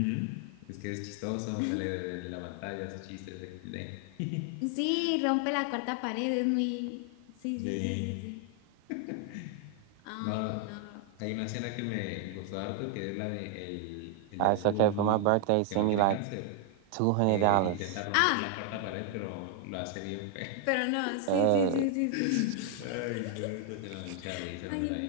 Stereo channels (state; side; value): different; both; correlation 0.00